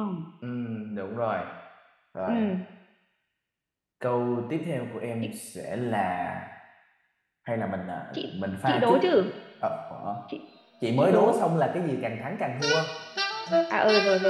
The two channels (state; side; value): identical; both; correlation 1.00